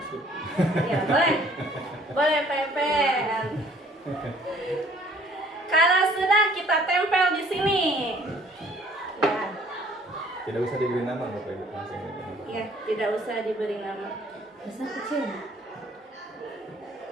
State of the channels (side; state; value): both; normal; correlation 0.57